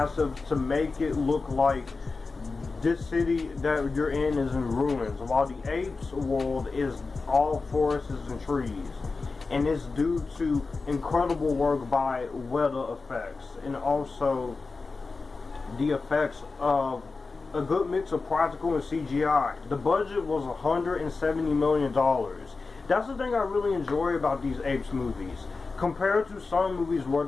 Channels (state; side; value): quieter; right; 4.1 dB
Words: to make it look like this city that you're in is in ruins, while the Apes world is all forests and trees. And it's due to incredible work by weather effects and also the effects of a good mix of practical and CGI. The budget was $170 million. That's the thing I really enjoy about these Apes movies. Compared to some movies where